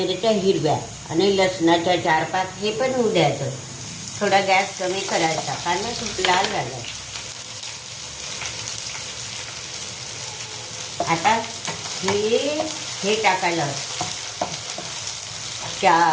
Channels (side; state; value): both; identical; correlation 1.00